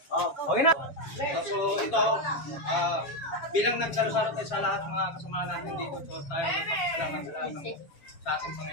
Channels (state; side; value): late; right; 7.2 ms